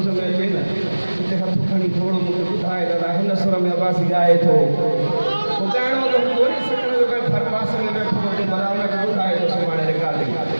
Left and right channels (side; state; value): both; inverted; correlation -1.00